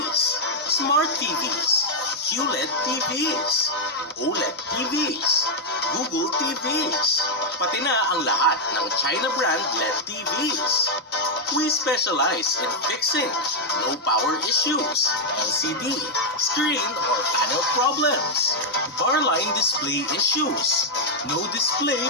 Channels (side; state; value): both; normal; correlation -0.02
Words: Smart TVs, QLED TVs, OLED TVs, Google TVs, pati na ang lahat ng China brand LED TVs. We specialize in fixing low power issues, LCD, screen or panel problems, bar line display issues, no display